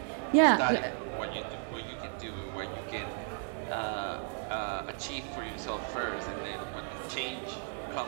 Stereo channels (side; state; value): left; silent; 55 dB below the other